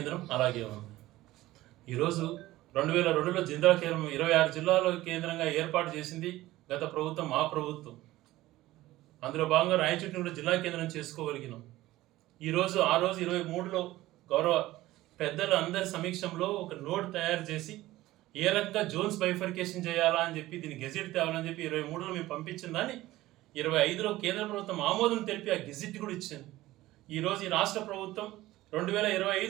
అలాగే ఉంది. ఈరోజు 2002లో జిల్లా కేంద్రం 26 జిల్లాల కేంద్రంగా ఏర్పాటు చేసింది గత ప్రభుత్వం, మా ప్రభుత్వం. అందులో భాగంగా రాయచోటిని కూడా జిల్లా కేంద్రం చేసుకోగలిగినాం. ఈరోజు ఆ రోజు 23లో గౌరవ పెద్దలు అందరి సమీక్షంలో ఒక నోట్ తయారు చేసి ఏ రకంగా జోన్స్ బైఫర్కేషన్ చేయాలా అని చెప్పి దీన్ని గెజిట్ తేవాలని చెప్పి 23లో మేము పంపించిన దాన్ని 25లో కేంద్ర ప్రభుత్వం ఆమోదం తెలిపి ఆ గెజిట్ కూడా ఇచ్చింది. ఈరోజు ఈ రాష్ట్ర ప్రభుత్వం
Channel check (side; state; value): left; quieter; 16.8 dB